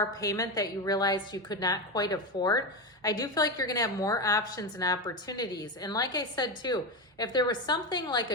payment that you realized you could not quite afford, I do feel like you're going to have more options and opportunities. And like I said too, if there was something like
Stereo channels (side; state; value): both; normal; correlation 0.15